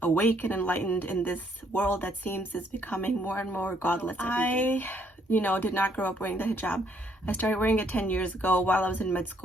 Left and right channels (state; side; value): normal; both; correlation 0.68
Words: awake and enlightened in this world that seems is becoming more and more godless. I did not grow up wearing the hijab. I started wearing it 10 years ago while I was in med